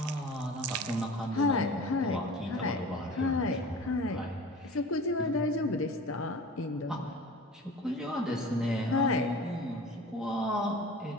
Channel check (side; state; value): both; normal; correlation 0.39